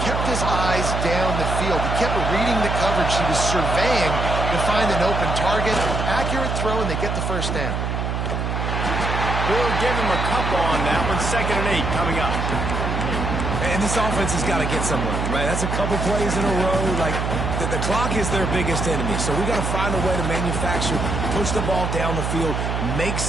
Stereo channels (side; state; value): right; noise; hum, 1 dB below the sound